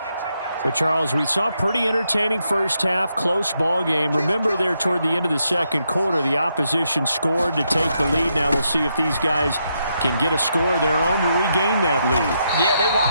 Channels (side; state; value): both; inverted; correlation -0.80